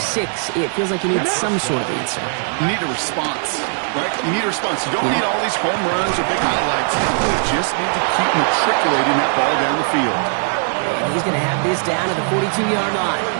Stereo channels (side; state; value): left; silent; 61 dB below the other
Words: 6, it feels like you need some sort of answer. You need a response, right? You need a response. You don't need all these home runs or big highlights. You just need to keep matriculating that ball down the field. And he's going to have this down to the 42-yard line.